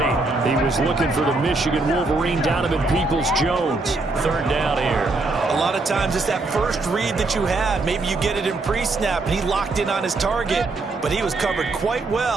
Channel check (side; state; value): left; quieter; 3.4 dB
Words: He was looking for the Michigan Wolverine, Donovan Peoples-Jones. Third down here. A lot of times it's that first read that you had. Maybe you get it in pre-snap, and he locked in on his target, but he was covered quite